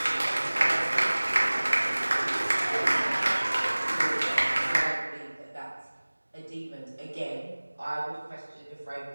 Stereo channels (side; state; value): both; inverted; correlation -1.00